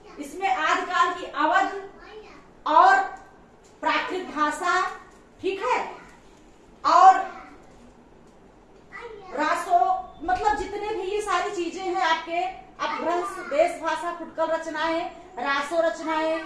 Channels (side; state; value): both; identical; correlation 1.00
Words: इसमें आदिकाल की अवध और प्राकृत भाषा, ठीक है, और रासो, मतलब जितने भी ये सारी चीजें हैं आपके अपभ्रंश, देश भाषा, फुटकल रचनाएं, रासो रचनाएं